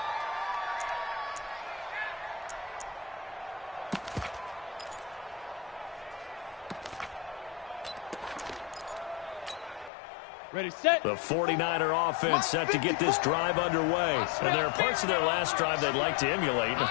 Ready, set. The 49er offense set to get this drive underway. And there are parts of their last drive they'd like to emulate. And, of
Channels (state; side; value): drops out; right; at 9.9 s